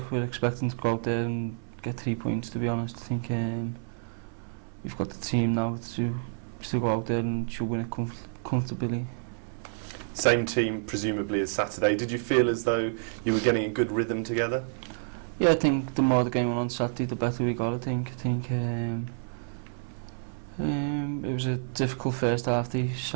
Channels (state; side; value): silent; left; 59 dB below the other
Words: we're expecting to go out there and get 3 points, to be honest. I think we've got the team now to go out there and should win it comfortably. Same team, presumably, as Saturday. Did you feel as though you were getting a good rhythm together? Yeah, I think the more the game went on Saturday, the better we got, I think. It was a difficult first half. They